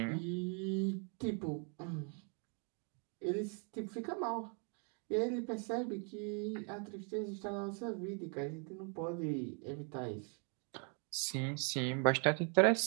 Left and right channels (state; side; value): quieter; left; 39.3 dB